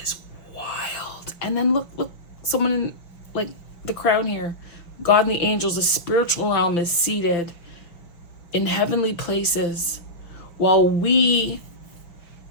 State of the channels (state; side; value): late; right; 5.7 ms